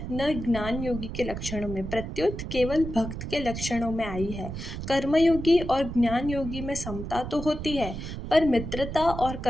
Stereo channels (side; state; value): right; noise; rumble, 7 dB below the sound